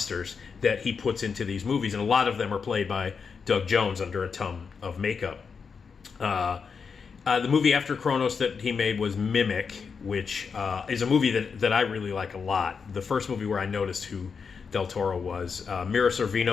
that he puts into these movies, and a lot of them are played by Doug Jones under a ton of makeup. The movie after Kronos that he made was Mimic, which is a movie that I really like a lot. The first movie where I noticed who Del Toro was. Mira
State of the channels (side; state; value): right; quieter; 5.7 dB